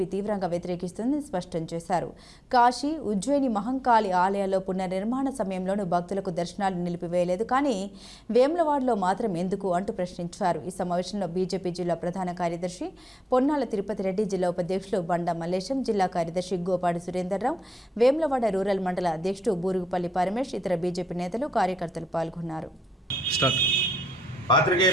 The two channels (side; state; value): both; normal; correlation 0.87